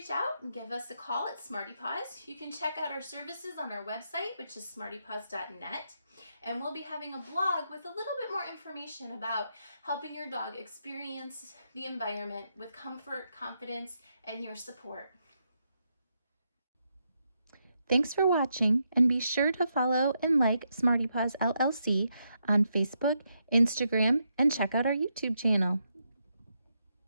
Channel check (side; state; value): both; inverted; correlation -0.81